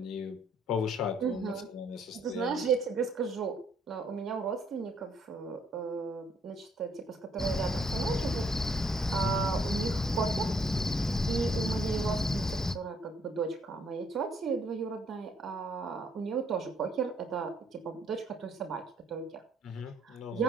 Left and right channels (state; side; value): normal; both; correlation 0.67